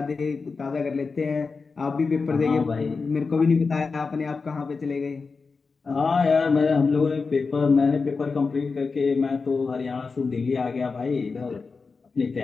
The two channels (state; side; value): quieter; right; 4.6 dB